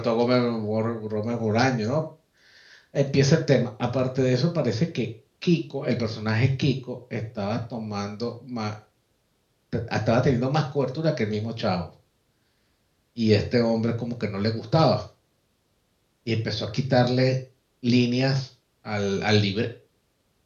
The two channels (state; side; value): identical; both; correlation 1.00